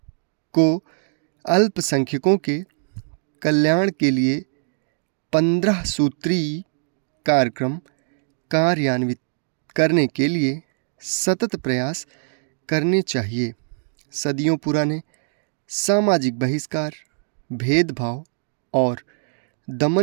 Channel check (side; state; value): left; silent; digital silence